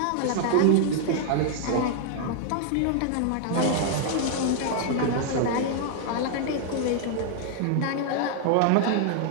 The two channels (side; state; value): both; different; correlation -0.01